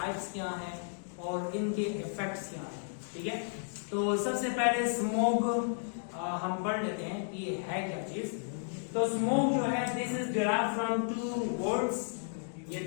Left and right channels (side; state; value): right; silent; digital silence